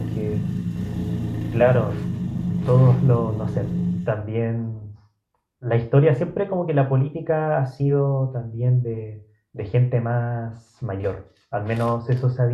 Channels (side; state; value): both; identical; correlation 1.00